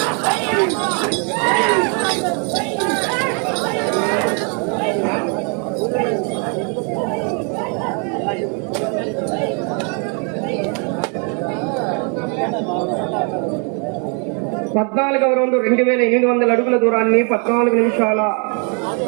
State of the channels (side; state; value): left; quieter; 37.7 dB